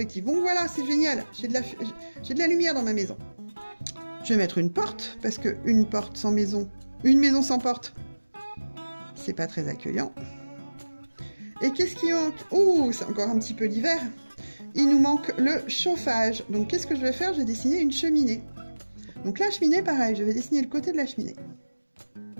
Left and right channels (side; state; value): both; inverted; correlation -1.00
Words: Donc voilà, c'est génial, j'ai de la lumière dans ma maison. Je vais mettre une porte, parce que une maison sans porte, c'est pas très accueillant. Et qu'est-ce qui manque? Ouh, c'est encore un petit peu l'hiver. Il nous manque le chauffage. Donc qu'est-ce que je vais faire? Je vais dessiner une cheminée. Donc la cheminée, pareil, je vais dessiner le côté de la cheminée.